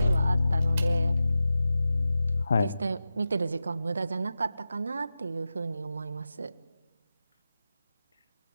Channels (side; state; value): both; inverted; correlation -0.92